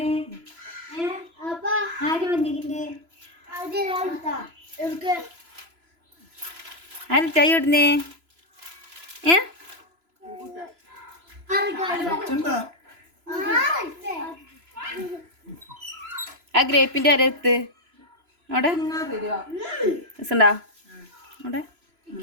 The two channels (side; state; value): left; late; 3.0 ms